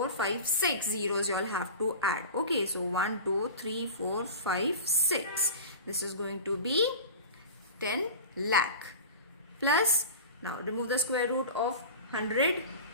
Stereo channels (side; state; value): both; inverted; correlation -0.34